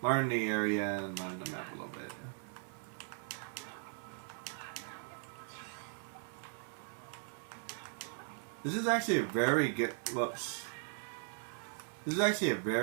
learn the area and learn the map a little bit. This is actually a very good, whoops. This is actually a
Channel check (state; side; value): silent; left; 52 dB below the other